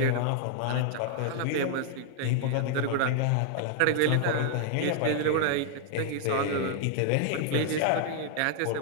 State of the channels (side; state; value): both; different; correlation 0.00